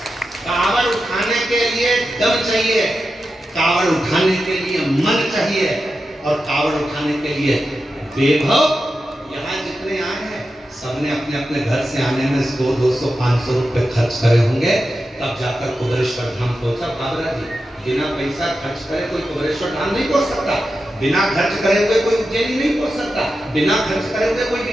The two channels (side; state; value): both; normal; correlation 0.90